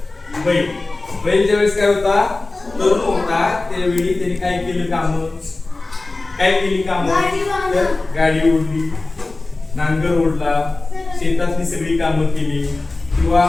बैल ज्यावेळेस काय होता तरुण होता, त्यावेळी त्याने काय केलं काम, काय केली काम, तर गाडी ओढली, नांगर ओढला, शेतातली सगळी कामं केली, किंवा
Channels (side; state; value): right; quieter; 3.2 dB